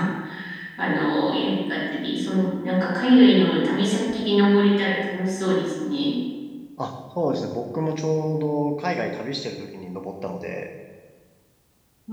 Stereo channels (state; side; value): identical; both; correlation 1.00